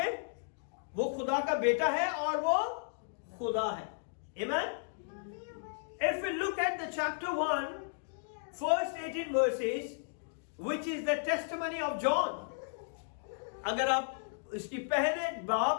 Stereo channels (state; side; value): silent; right; digital silence